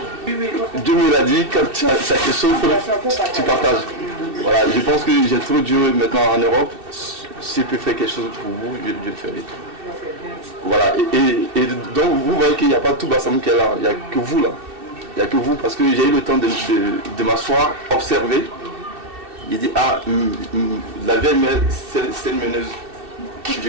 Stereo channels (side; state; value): left; late; 2.7 ms